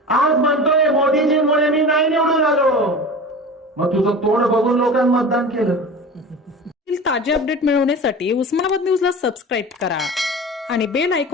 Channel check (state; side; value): normal; both; correlation 0.33